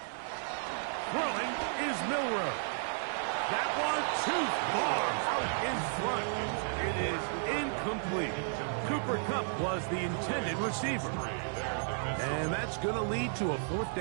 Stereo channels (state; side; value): silent; left; 56 dB below the other